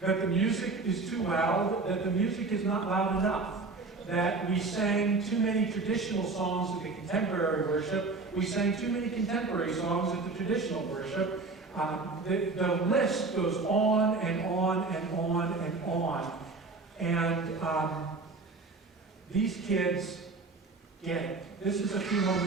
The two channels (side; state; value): left; quieter; 3.8 dB